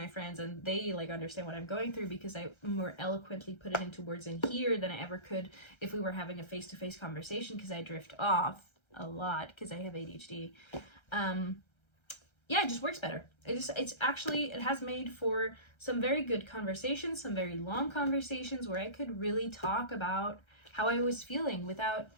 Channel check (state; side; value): late; right; 1.3 ms